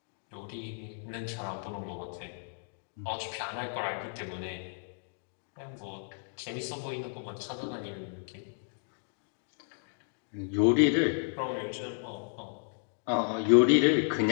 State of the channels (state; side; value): silent; right; digital silence